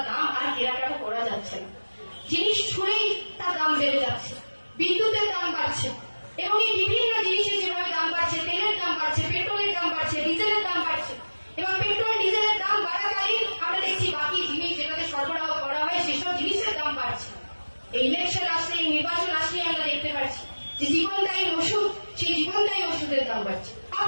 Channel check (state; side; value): inverted; both; correlation -1.00